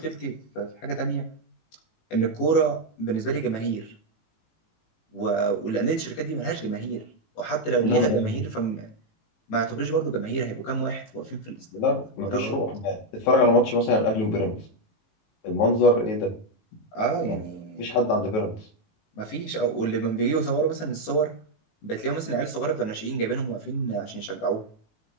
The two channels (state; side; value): late; right; 18 ms